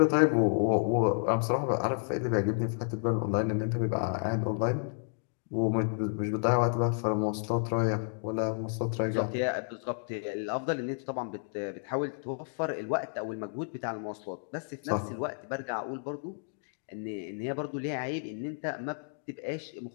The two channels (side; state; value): right; silent; digital silence